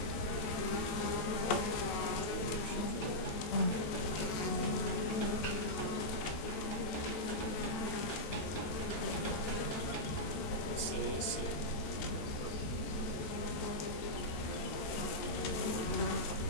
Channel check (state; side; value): late; right; 13 ms